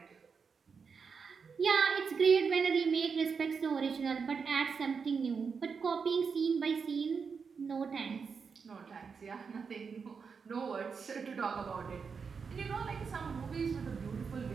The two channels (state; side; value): quieter; left; 5.7 dB